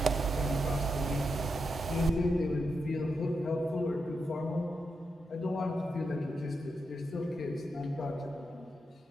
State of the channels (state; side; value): normal; both; correlation 0.85